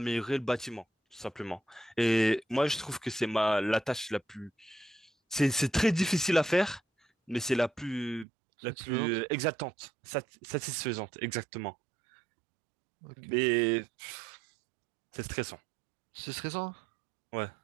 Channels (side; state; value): left; drops out; at 8.2 s